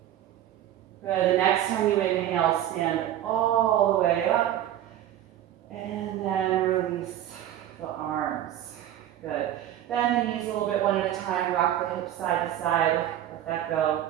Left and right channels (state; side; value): quieter; left; 12.1 dB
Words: Good, the next time you inhale, stand all the way up and then release the arms. Good. Bend the knees a little bit one at a time, rock the hips side to side, let that go.